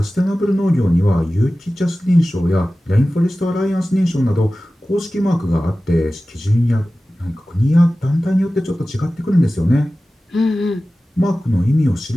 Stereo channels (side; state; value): both; normal; correlation 0.96